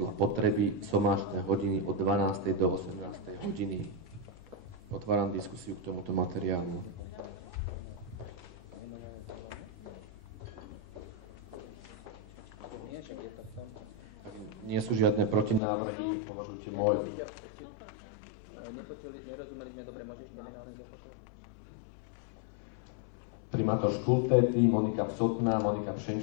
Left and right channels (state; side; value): drops out; right; at 15.6 s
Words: potreby sobášne hodiny od 12. do 18. hodiny. Otváram diskusiu k tomuto materiálu. Nie sú žiadne protinávrhy, považujte môj... Primátor Škultéty, Monika Psotná, Monika